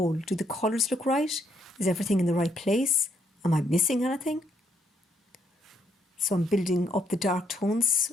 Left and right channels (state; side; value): normal; both; correlation 0.73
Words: Do the colours look right? Is everything in the right place? Am I missing anything? So I'm building up the dark tones